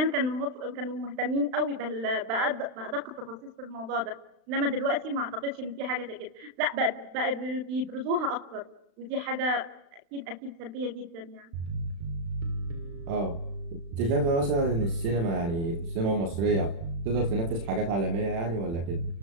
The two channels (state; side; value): late; left; 36 ms